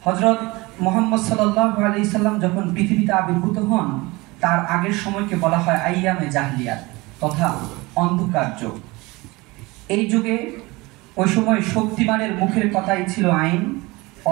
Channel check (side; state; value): left; quieter; 22.9 dB